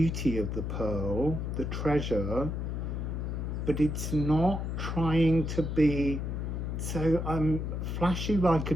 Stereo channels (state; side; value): noise; left; hum, 3 dB below the sound